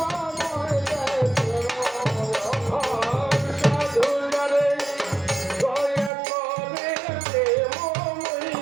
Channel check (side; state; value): left; drops out; at 6.1 s